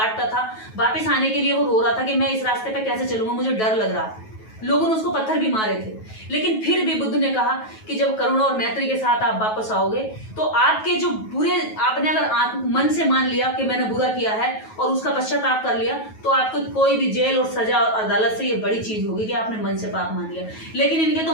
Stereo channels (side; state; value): right; late; 9.3 ms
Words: था, वापस आने के लिए वो रो रहा था कि मैं इस रास्ते पे कैसे चलूंगा, मुझे डर लग रहा है। लोगों ने उसको पत्थर भी मारे थे, लेकिन फिर भी बुद्ध ने कहा कि जब करुणा और मैत्री के साथ आप वापस आओगे तो आपके जो बुरे, आपने अगर मन से मान लिया कि मैंने बुरा किया है और उसका पश्चाताप कर लिया तो आपको कोई भी जेल और सजा और अदालत से ये बड़ी चीज होगी कि आपने मन से पाप मान लिया। लेकिन इनके तो